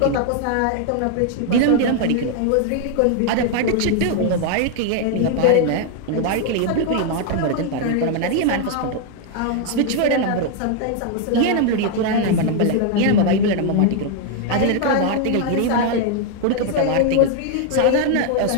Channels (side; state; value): both; different; correlation 0.00